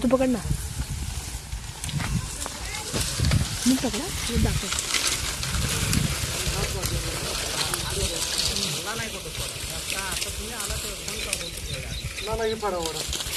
तू पकड ना. मी पकडा मी दाखव. नाही पडा वडा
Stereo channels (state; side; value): identical; both; correlation 1.00